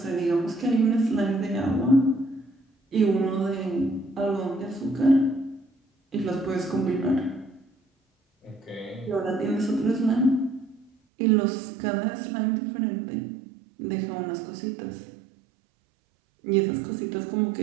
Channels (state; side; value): drops out; left; at 10.9 s